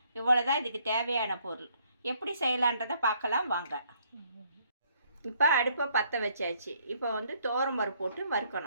இவ்வளோ தான் இதுக்கு தேவையான பொருள். எப்படி செய்யலான்றதை பார்க்கலாம் வாங்க. இப்போ அடுப்பை பற்ற வச்சாச்சு. இப்போ துவரம்பருப்பு போட்டு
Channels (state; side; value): inverted; both; correlation -0.67